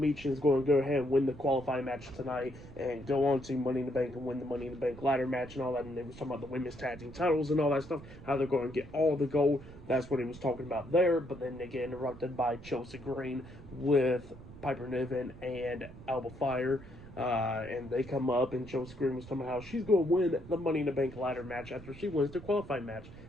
is going to go ahead and win the qualifying match tonight and go on to Money in the Bank and win the Money in the Bank ladder match and all that. And they was talking about the women's tag team titles and all that stuff, how they're going to get all the gold. That's what he was talking about there. But then they get interrupted by Chelsea Green with Piper Niven and Alba Fire. And they come up, and Chelsea Green was talking about how she's going to win the Money in the Bank ladder match after she wins the qualifying match.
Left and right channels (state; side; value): noise; right; rumble, 17 dB below the sound